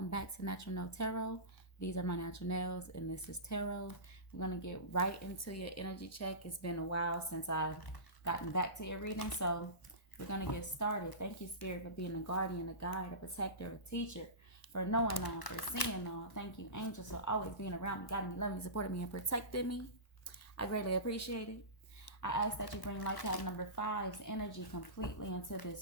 back to Natural Nail Tarot. These are my natural nails, and this is tarot. We're going to get right into your energy check. It's been a while since I've gotten back to your reading, so we're going to get started. Thank you, Spirit, for being a guardian, a guide, a protector, a teacher, for knowing all, for seeing all. Thank you, angels, for always being around me, guiding me, loving me, supporting me, and protecting me. I greatly appreciate it. I ask that you bring life path number 5's energy completely into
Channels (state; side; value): late; right; 1.0 ms